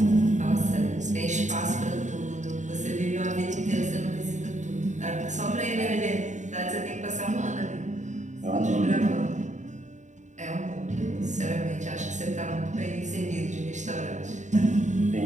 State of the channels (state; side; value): late; left; 0.35 ms